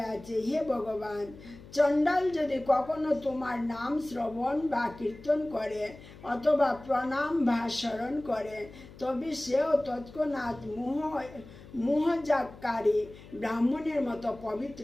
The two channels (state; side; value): noise; left; hum, 19 dB below the sound